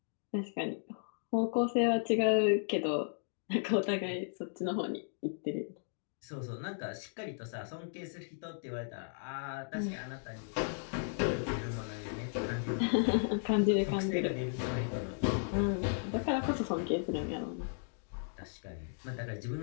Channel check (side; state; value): right; silent; digital silence